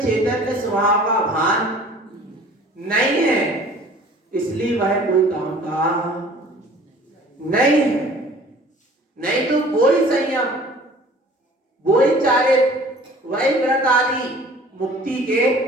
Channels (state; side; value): normal; both; correlation 0.49